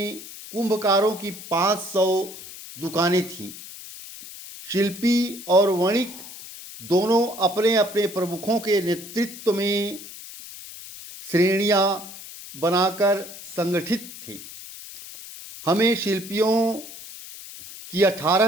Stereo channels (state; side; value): noise; left; hiss, 14 dB below the sound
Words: कुंभकारों की 500 दुकानें थीं। शिल्पी और वणिक दोनों अपने अपने प्रमुखों के नेतृत्व में श्रेणियां बनाकर संगठित थे। हमें शिल्पियों की